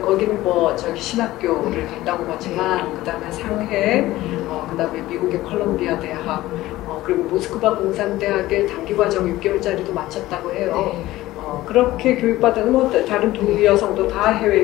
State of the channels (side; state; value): right; quieter; 16.6 dB